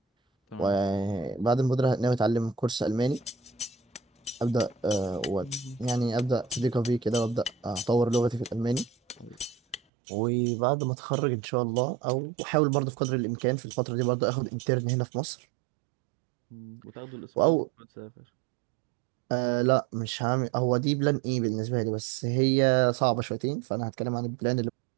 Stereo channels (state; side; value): drops out; left; at 9.8 s